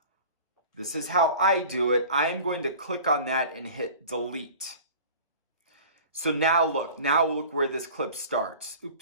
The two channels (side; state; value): both; inverted; correlation -0.42